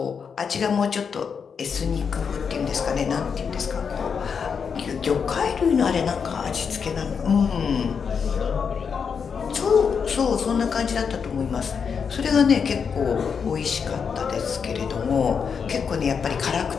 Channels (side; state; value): right; quieter; 6.3 dB